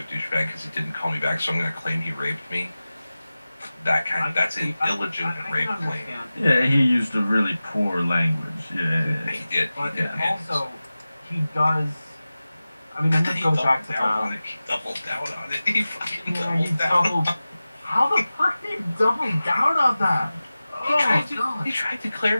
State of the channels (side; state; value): both; inverted; correlation -0.96